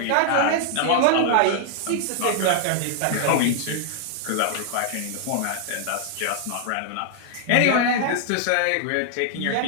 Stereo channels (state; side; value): different; both; correlation 0.00